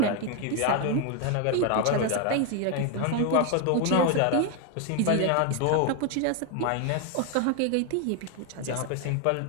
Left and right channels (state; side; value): different; both; correlation 0.01